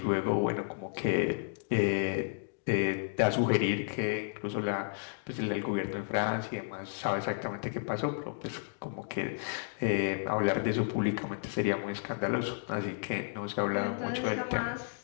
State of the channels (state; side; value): silent; right; digital silence